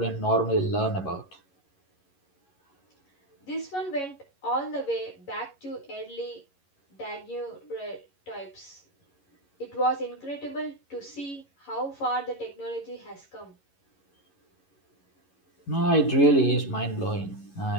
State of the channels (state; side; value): late; right; 11 ms